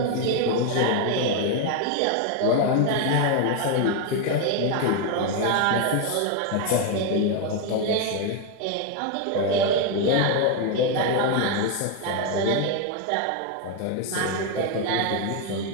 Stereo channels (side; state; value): both; different; correlation 0.01